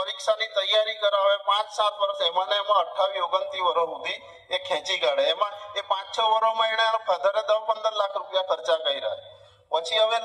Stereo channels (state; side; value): identical; both; correlation 1.00